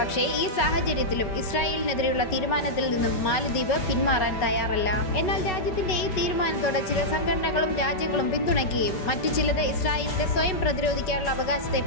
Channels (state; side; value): late; right; 5.3 ms